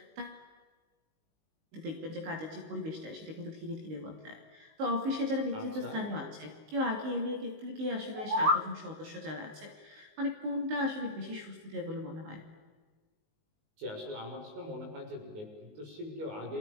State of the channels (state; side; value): late; left; 19 ms